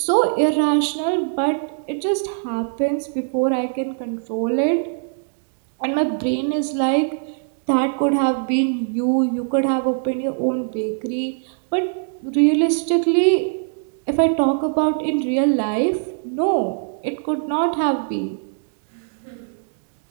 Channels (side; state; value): left; silent; digital silence